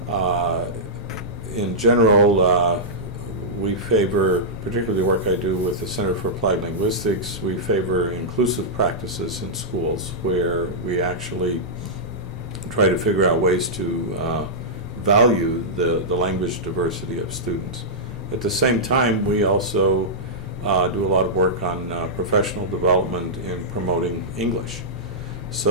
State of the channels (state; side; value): normal; both; correlation -0.12